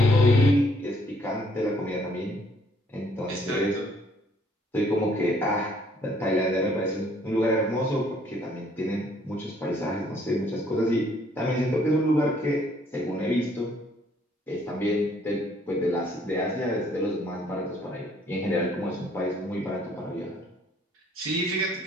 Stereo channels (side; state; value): both; normal; correlation 0.64